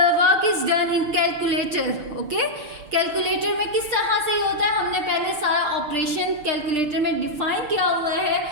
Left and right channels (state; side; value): late; left; 6.7 ms